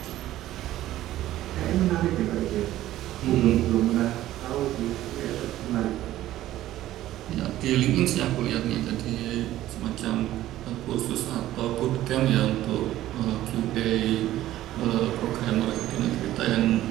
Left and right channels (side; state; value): left; quieter; 14.2 dB